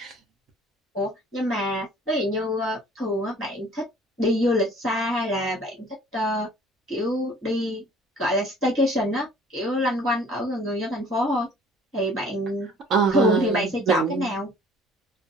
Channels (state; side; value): normal; both; correlation 0.53